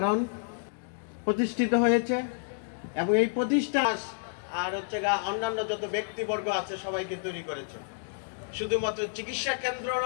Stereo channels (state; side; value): silent; right; digital silence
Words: প্রতিষ্ঠিত হয়েছে এবং এই প্রতিষ্ঠান আর অন্যান্য যত ব্যক্তিবর্গ আছে সবাইকে তৈরি করেছে। শুধুমাত্র চিকিৎসা কেন্দ্র